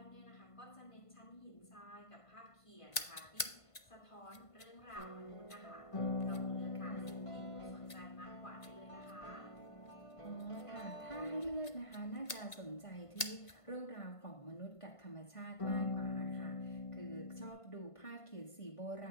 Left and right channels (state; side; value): late; right; 1.5 ms